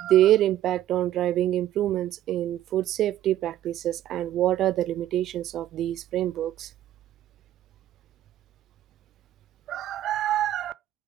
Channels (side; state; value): left; quieter; 12.8 dB